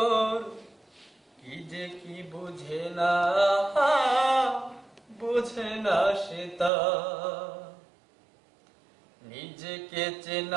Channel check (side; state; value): left; drops out; at 6.7 s